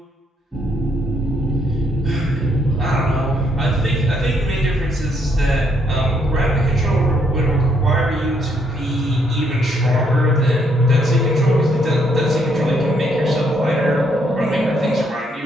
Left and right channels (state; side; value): normal; both; correlation 0.72